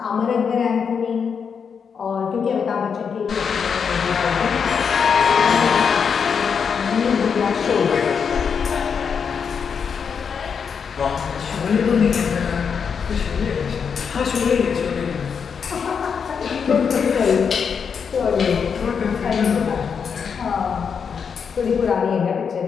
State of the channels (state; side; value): quieter; right; 6.5 dB